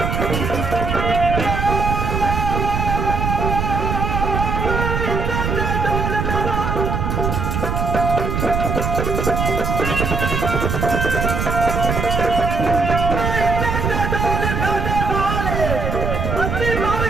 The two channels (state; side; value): noise; right; rumble, 1 dB below the sound